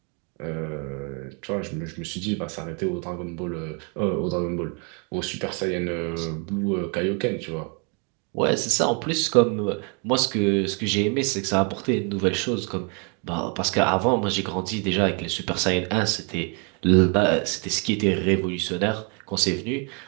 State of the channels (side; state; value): left; quieter; 36.1 dB